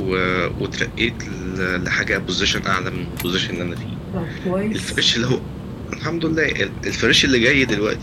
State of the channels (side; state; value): both; identical; correlation 1.00